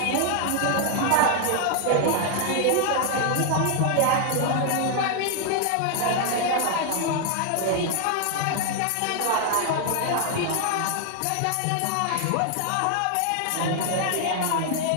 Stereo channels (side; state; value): both; different; correlation 0.00